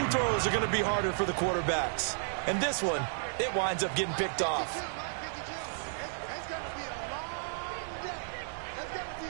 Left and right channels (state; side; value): silent; left; digital silence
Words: throws are going to be harder for the quarterbacks. And this one, it winds up getting picked off.